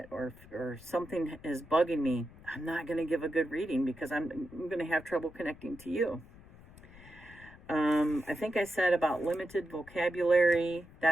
or something is bugging me, I'm not going to give a good reading because I'm going to have trouble connecting to you. I think I said about limited vocabulary.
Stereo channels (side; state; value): left; noise; rumble, 21 dB below the sound